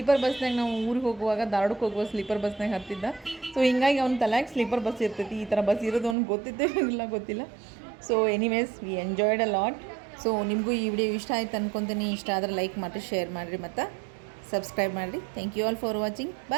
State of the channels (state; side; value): drops out; left; at 6.2 s